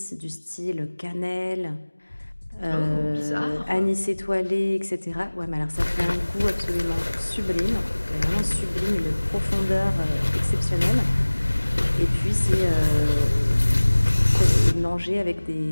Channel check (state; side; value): inverted; both; correlation -1.00